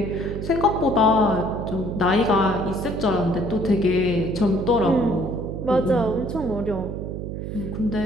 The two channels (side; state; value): right; noise; hum, 6 dB below the sound